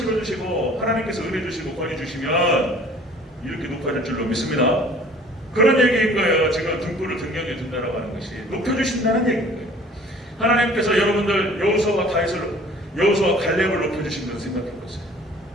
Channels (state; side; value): normal; both; correlation 0.51